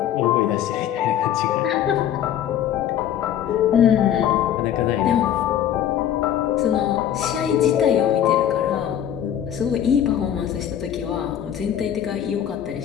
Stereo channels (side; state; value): right; quieter; 10.3 dB